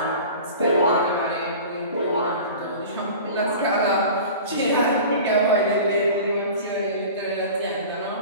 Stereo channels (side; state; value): both; inverted; correlation -0.38